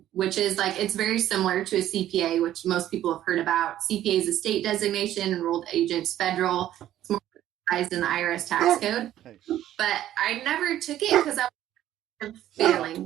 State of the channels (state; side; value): quieter; left; 12.5 dB